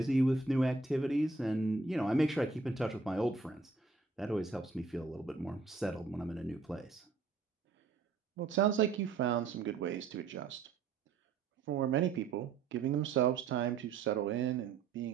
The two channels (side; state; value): left; quieter; 4.3 dB